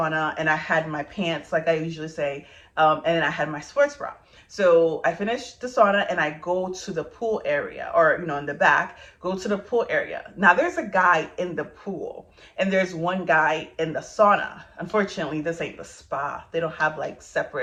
and I had my pants, like I usually say, and then I had my sports bra. So I finished the sauna and I go to the pool area, or, you know, in the back, go to the pool area. Now there's a guy in the pool and there's one guy in the sauna. Unfortunately, this ain't the spa. They don't have like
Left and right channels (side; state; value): both; identical; correlation 1.00